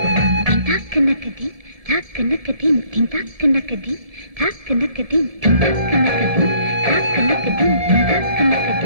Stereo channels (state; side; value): late; left; 1.7 ms